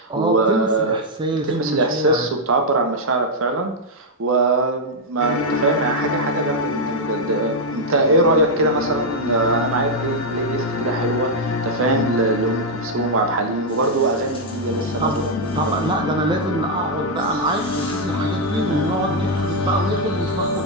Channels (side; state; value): both; normal; correlation -0.01